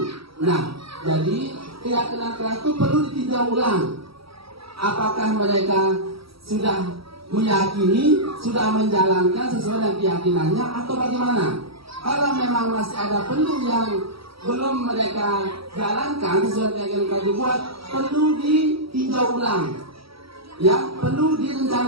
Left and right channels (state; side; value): late; left; 0.76 ms